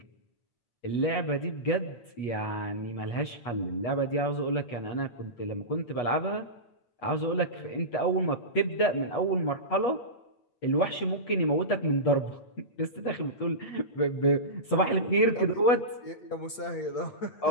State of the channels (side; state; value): right; late; 8.5 ms